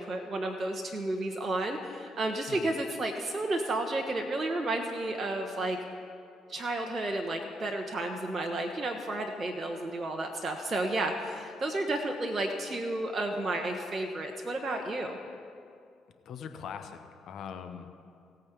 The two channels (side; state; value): both; normal; correlation 0.80